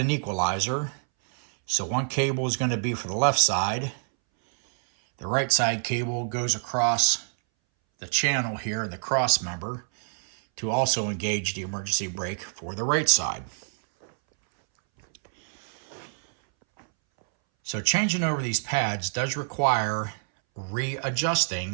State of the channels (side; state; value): left; silent; 60 dB below the other